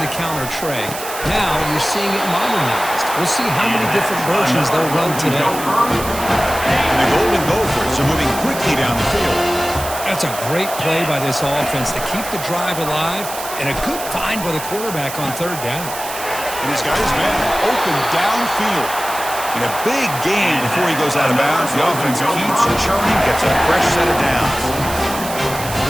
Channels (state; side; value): noise; right; hiss, 9 dB below the sound